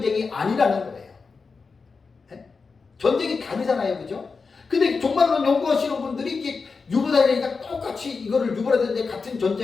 아니라는 거예요. 네? 전쟁이 다르잖아요, 그죠? 근데 종말론 연구하시는 분들이 이게 유브라데니까 똑같이 이거를 유브라데 같은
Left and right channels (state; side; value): quieter; right; 4.7 dB